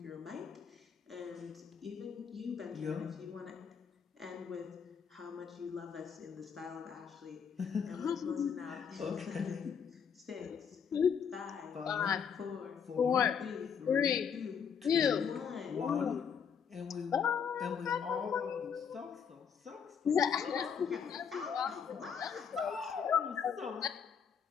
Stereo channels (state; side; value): quieter; right; 7.0 dB